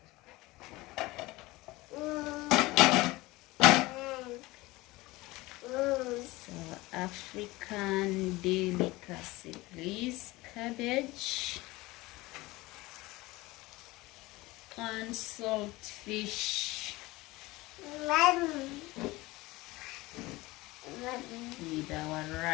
So African delicacy, please. Cabbage and saltfish. With our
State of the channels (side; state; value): right; quieter; 20.5 dB